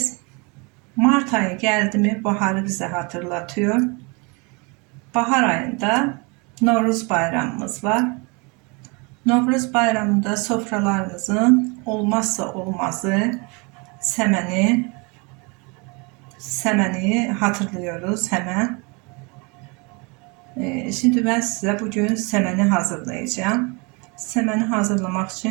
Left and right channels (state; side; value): quieter; left; 30.1 dB